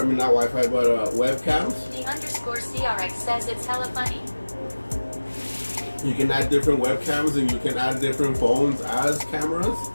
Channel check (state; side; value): inverted; both; correlation -1.00